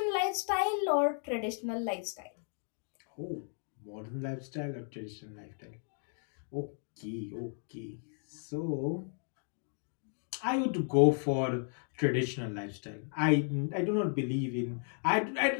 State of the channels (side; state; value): right; silent; 55 dB below the other